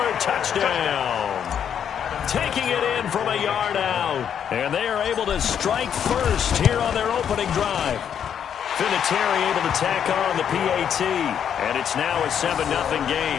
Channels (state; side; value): quieter; right; 8.6 dB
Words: touchdown. Taking it in from a yard out. And they are able to strike first here on their opening drive. Vinatieri able to tack on the PAT. And it's now a 7-0